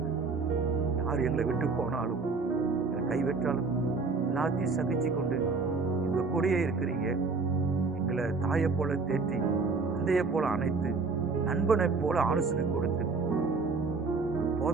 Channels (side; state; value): left; quieter; 4.3 dB